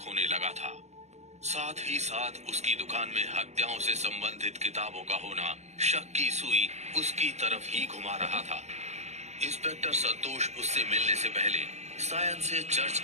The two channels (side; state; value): left; late; 0.33 ms